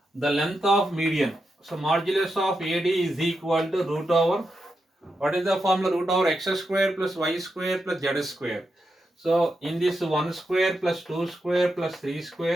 the length of median. So modulus of AD is equal to root over, what is the formula? Root over x square plus y square plus z square. So in this 1 square plus 2 square plus 3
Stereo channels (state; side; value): normal; both; correlation 0.86